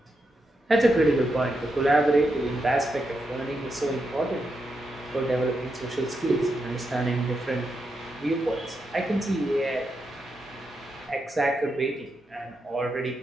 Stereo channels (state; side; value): normal; both; correlation 0.84